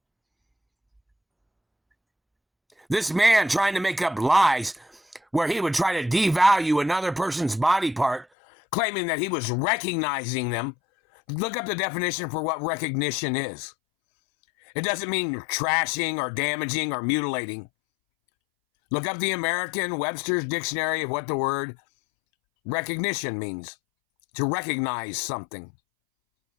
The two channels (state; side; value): drops out; right; at 8.2 s